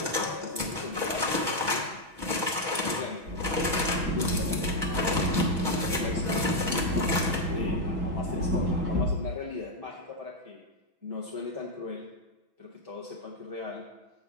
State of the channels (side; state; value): left; late; 6.2 ms